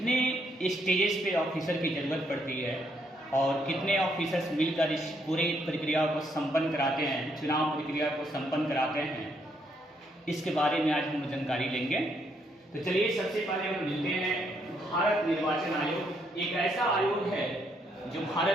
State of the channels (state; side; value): normal; both; correlation 0.73